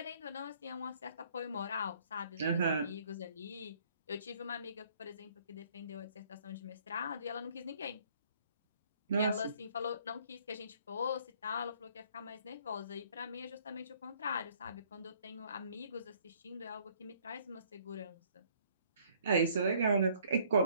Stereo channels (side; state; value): both; inverted; correlation -0.61